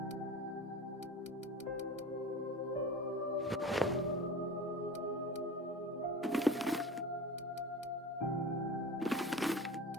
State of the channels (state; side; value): normal; both; correlation 0.35